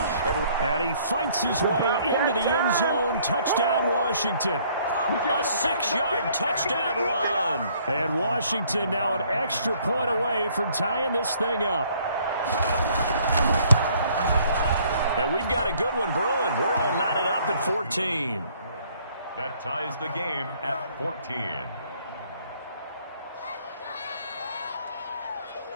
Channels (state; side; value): inverted; both; correlation -0.62